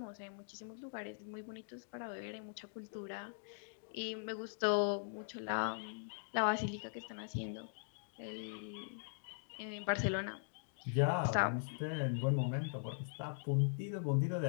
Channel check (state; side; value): silent; right; digital silence